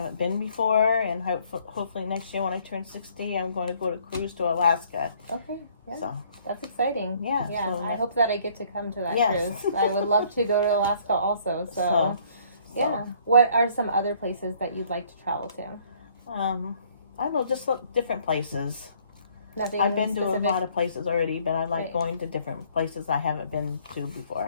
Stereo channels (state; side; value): inverted; both; correlation -0.61